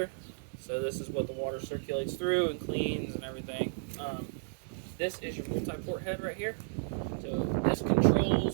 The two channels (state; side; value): silent; left; digital silence